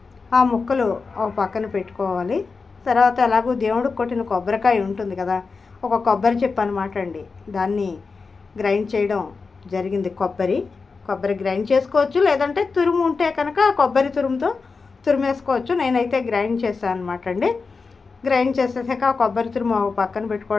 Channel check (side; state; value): right; quieter; 4.6 dB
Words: ఆ ముక్కలు ఒక పక్కన పెట్టుకోవాలి. తర్వాత ఎలాగో దేవుడికి కొట్టిన కొబ్బరికాయ ఉంటుంది కదా, ఒక కొబ్బరి చెప్పు అనమాట అండి, దాన్ని గ్రైండ్ చేయడం జరిగింది. కొబ్బరి గ్రైండ్ చేసుకోవచ్చు, లేదంటే తురుము ఉంటే కనుక కొబ్బరి తురుముతో తురిమేసుకోవచ్చు. నేనైతే గ్రైండ్ చేశాను అనమాట అండి. గ్రైండ్ చేసేసాక కొబ్బరి తురుము పక్కన